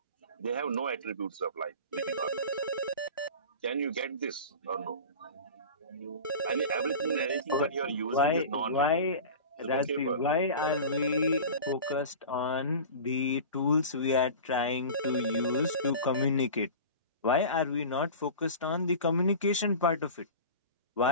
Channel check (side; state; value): both; inverted; correlation -0.34